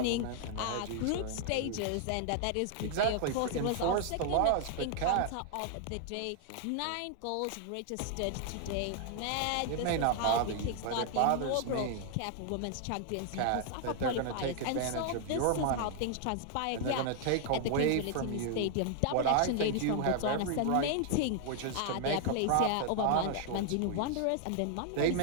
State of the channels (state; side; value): different; both; correlation 0.00